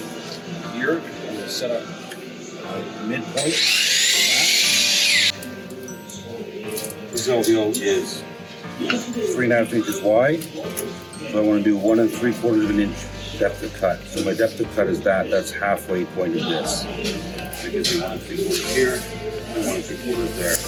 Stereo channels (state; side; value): identical; both; correlation 1.00